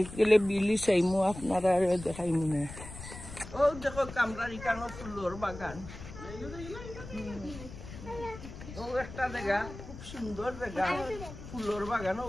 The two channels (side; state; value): left; noise; rumble, 13 dB below the sound